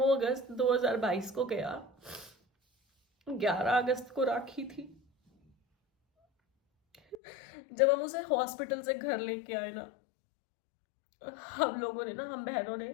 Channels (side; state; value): right; drops out; at 7.2 s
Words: अगस्त 2022 को गया, 11 अगस्त को राखी थी। जब हम उसे हॉस्पिटल से घर लेके आए ना, हम लोगों ने ना, हम बहनों ने